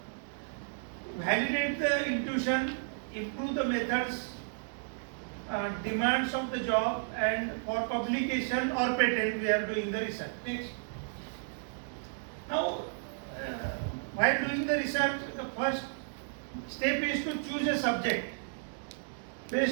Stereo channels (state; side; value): silent; left; digital silence